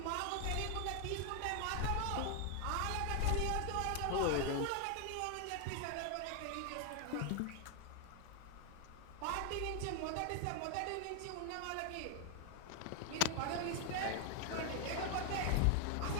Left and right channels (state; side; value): different; both; correlation 0.00